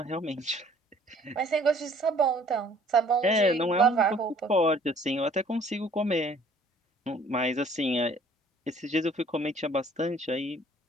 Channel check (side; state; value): both; normal; correlation 0.56